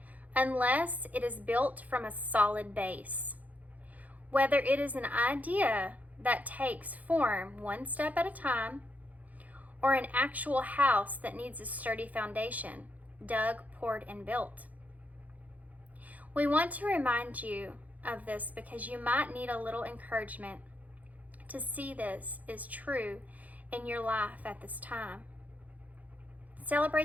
unless it is built from a solid base. Whether it is an idea that takes form one step at a time, or an actual house that needs a sturdy foundation, dug, poured, and built. We want to remind you of this because you might need a little encouragement to see this is true in your life at this time.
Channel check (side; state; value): left; late; 0.077 ms